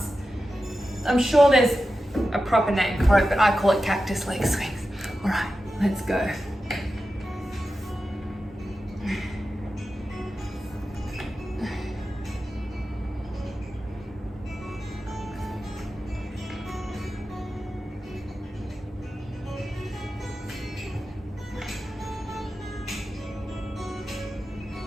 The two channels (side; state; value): both; normal; correlation 0.92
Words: I'm sure there's a proper name for it, but I call it cactus leg swings. All right, let's go.